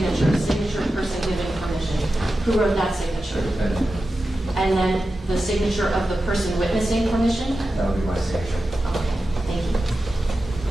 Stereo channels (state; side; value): normal; both; correlation 0.92